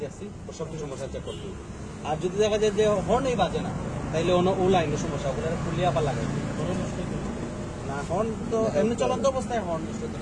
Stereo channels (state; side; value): identical; both; correlation 1.00